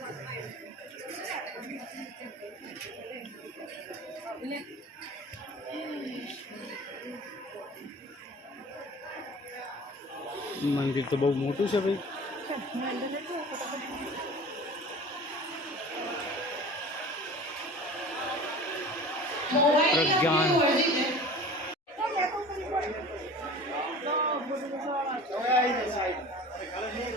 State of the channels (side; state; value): both; normal; correlation 0.40